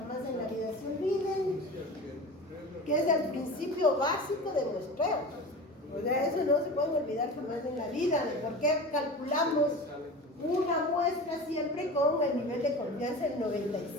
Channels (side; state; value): both; normal; correlation 0.33